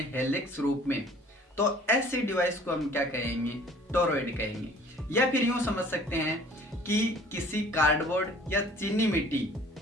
हेलिक्स रूप में, तो ऐसे डिवाइस को हम क्या कहेंगे? टोरॉइड कहेंगे। या फिर यूं समझ सकते हैं कि किसी कार्डबोर्ड या चीनी मिट्टी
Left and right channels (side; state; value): both; normal; correlation 0.52